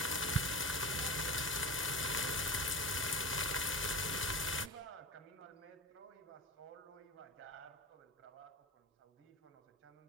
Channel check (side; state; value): both; normal; correlation 0.30